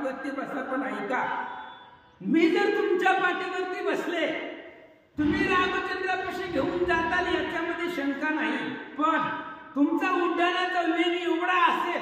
बसा पण ऐका मी जर तुमच्या पाठीवरती बसले तुम्ही रामचंद्रापाशी घेऊन जाताल याच्यामध्ये शंका नाही. पण तुमचा उड्डाणाचा वेग एवढा असेल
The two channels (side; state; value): both; identical; correlation 1.00